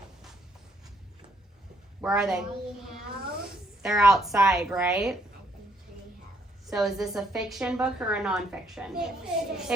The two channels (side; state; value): both; normal; correlation 0.70